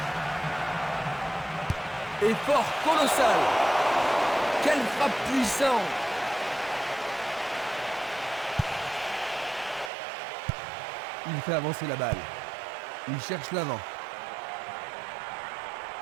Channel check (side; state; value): left; drops out; at 9.9 s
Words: Effort colossal. Quelle frappe puissante. Il fait avancer la balle. Il cherche l'avant.